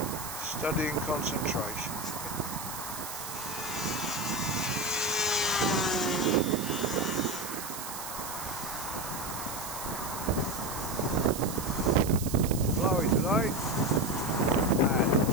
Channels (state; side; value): noise; right; hiss, 8 dB below the sound